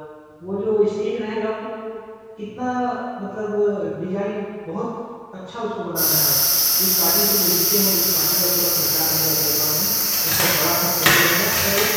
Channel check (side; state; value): both; identical; correlation 1.00